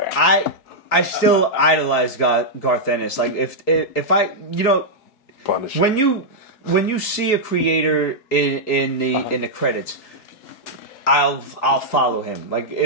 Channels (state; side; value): late; right; 4.7 ms